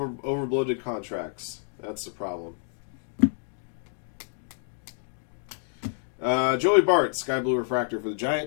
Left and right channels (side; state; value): right; silent; 59 dB below the other